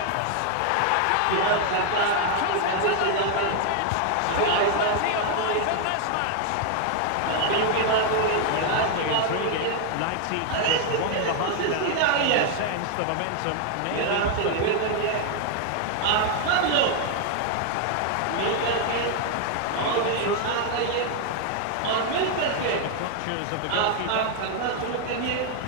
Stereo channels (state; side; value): different; both; correlation 0.00